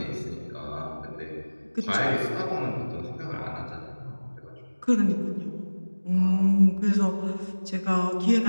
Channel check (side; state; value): both; inverted; correlation -1.00